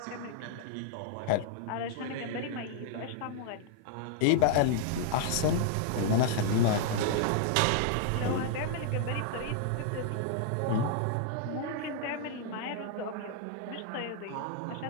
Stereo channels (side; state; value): both; different; correlation -0.01